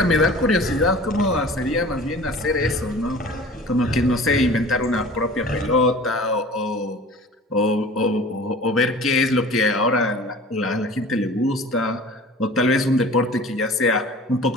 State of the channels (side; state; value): both; normal; correlation 0.43